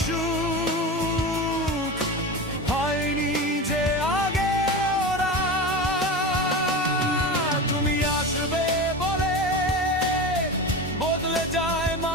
সুখ হয়নি যে আগে ওরা। তুমি আসবে বলে বদলে যায়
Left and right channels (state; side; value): normal; both; correlation 0.26